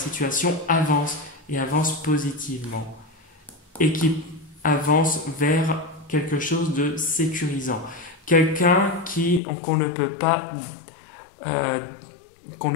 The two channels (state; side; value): drops out; right; at 9.4 s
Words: avance positivement et qui avance vers quelque chose de sécurisant. Quelqu'un qu'on ne peut pas